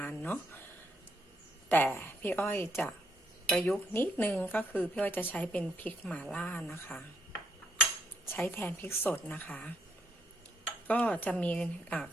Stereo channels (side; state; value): both; normal; correlation 0.74